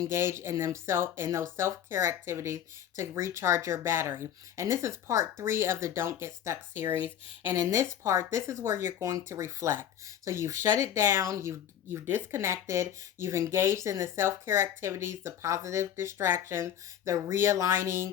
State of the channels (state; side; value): quieter; right; 9.9 dB